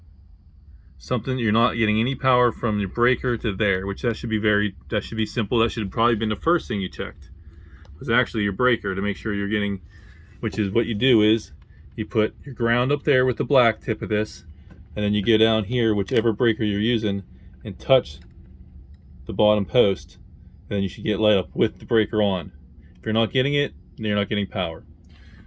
Something, you're not getting any power from your breaker to there, which that should be simple. That should have probably been the first thing you checked, was actually your breaker, to make sure you're getting, which is what you do is you put your ground up there with the black tip of this, and then you go down here, whichever breaker you're using, and touch the bottom post, and then you should get light up with the breaker on. If you're not getting it, then you're not getting power.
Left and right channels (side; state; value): both; identical; correlation 1.00